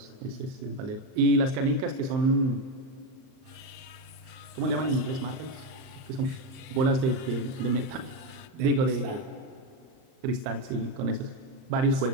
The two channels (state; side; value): late; left; 38 ms